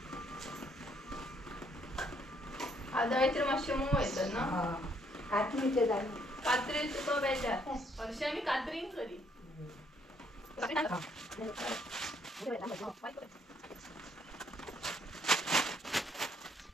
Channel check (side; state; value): both; normal; correlation 0.69